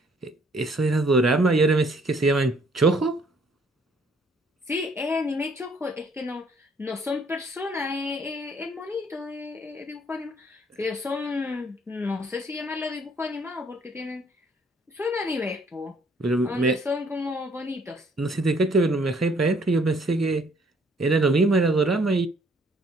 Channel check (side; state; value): both; normal; correlation 0.63